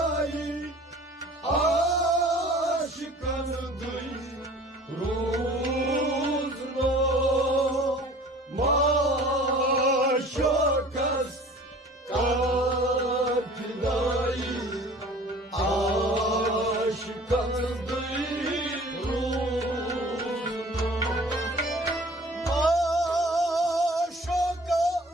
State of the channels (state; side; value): normal; both; correlation 0.47